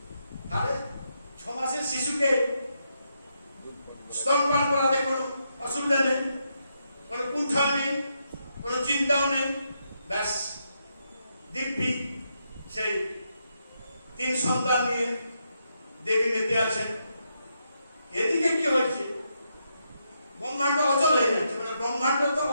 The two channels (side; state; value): both; inverted; correlation -0.81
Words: তাহলে 6 মাসের শিশুকে স্তনপান করাতে কোনো অসুবিধা নেই, কোনো কুণ্ঠা নেই, কোনো চিন্তাও নেই। ব্যাস, দিব্যি সেই 3 সন্তান নিয়ে দেবী মেতে আছেন। এদিকে কি হয়েছে? ব্রহ্মাণ্ড অচল হয়ে যাচ্ছে, মানে ব্রহ্মাণ্ড তো